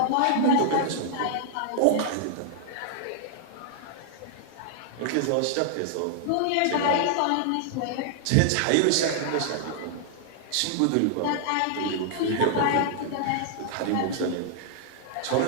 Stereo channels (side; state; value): both; different; correlation 0.00